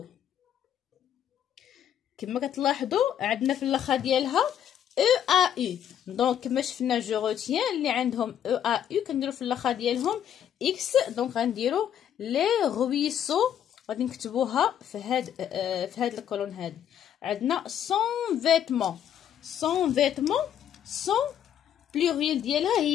كما كتلاحظوا عندنا في الاخر ديالها او ا يو، دونك كما شفنا جو روتيان اللي عندهم او ا يو كنديرو في الاخر ديالهم اكس. دونك غنديرو لي رويسو غادي نكتبوها في هاد الكولون هادي. عندنا سون فيتمون. سون فيتمون سون بلوريال ديالها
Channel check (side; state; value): right; quieter; 9.8 dB